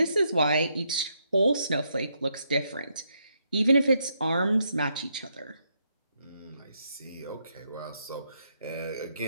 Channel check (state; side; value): inverted; both; correlation -0.78